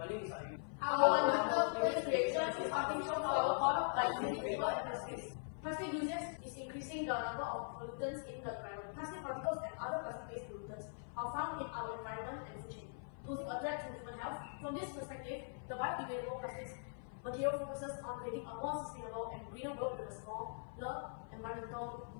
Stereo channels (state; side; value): silent; right; 50 dB below the other